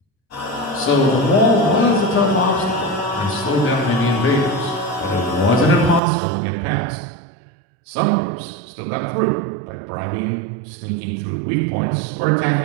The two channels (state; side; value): drops out; left; at 6.0 s